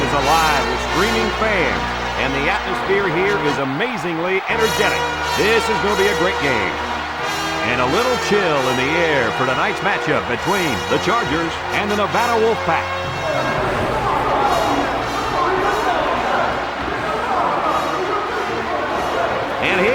is alive with screaming fans, and the atmosphere here is amazingly energetic. This is going to be a great game. And a little chill in the air for tonight's matchup between the Chargers and the Nevada Wolfpack. And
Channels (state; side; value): identical; both; correlation 1.00